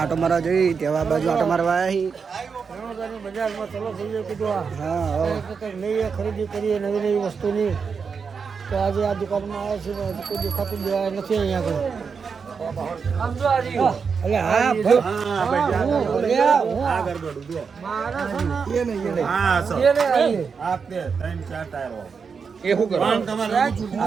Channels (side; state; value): left; quieter; 5.7 dB